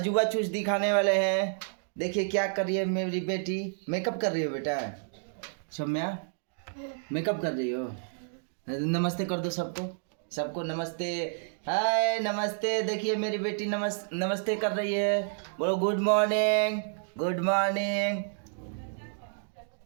चूज दिखाने वाले हैं। देखिए क्या कर रही है मेरी बेटी। मेकअप कर रही हो बेटा? सौम्या मेकअप कर रही हो? नमस्ते कर दो सबको, सबको नमस्ते। हाय नमस्ते। देखिए मेरी बेटी नमस्ते कर रही है। बोलो गुड मॉर्निंग, गुड मॉर्निंग।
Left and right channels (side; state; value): left; silent; digital silence